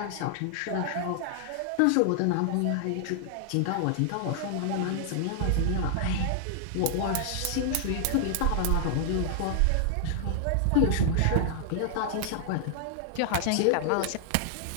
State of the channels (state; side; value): different; both; correlation 0.00